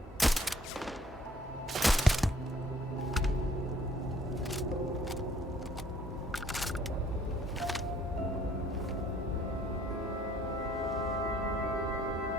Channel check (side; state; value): both; normal; correlation 0.60